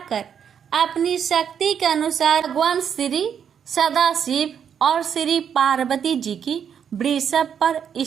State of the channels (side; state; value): left; quieter; 8.0 dB